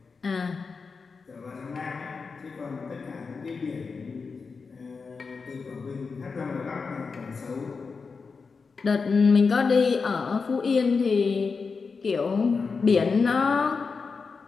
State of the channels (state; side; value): quieter; right; 4.9 dB